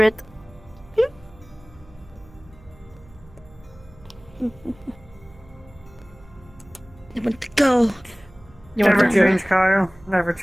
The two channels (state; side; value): noise; right; hum, 24 dB below the sound